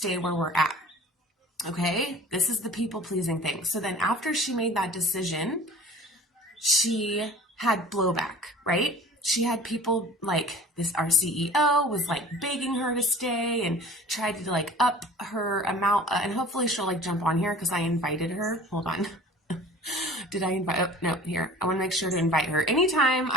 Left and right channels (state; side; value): normal; both; correlation 0.44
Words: where we're at. Okay. This is the people pleasing thing. So then after she made that decision, she had blowback, right? She had people our CEO was begging her to stay and tried to up her amount. And hopefully she'll jump on here because I invited her. Hold on. Did I invite? Oh, no, here. I want to make sure to invite her. Anytime